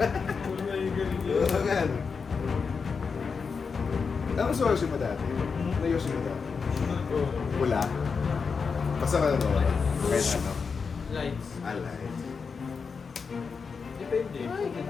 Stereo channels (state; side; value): quieter; right; 5.4 dB